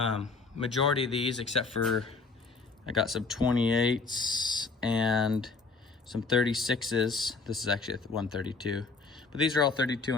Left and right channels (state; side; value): quieter; right; 4.2 dB